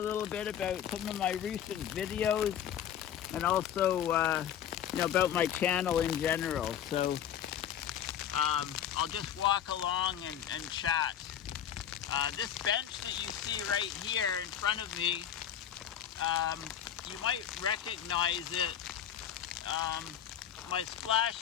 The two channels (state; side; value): quieter; right; 9.8 dB